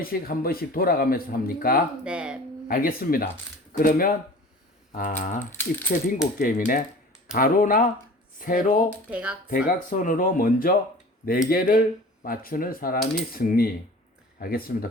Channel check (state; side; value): normal; both; correlation 0.42